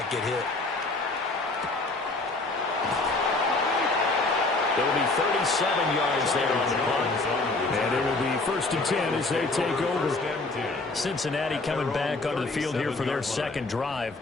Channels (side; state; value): right; quieter; 3.3 dB